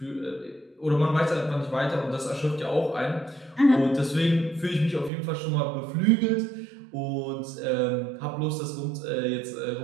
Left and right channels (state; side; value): drops out; left; at 5.1 s